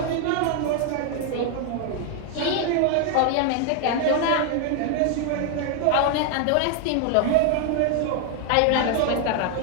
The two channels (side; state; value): both; different; correlation 0.00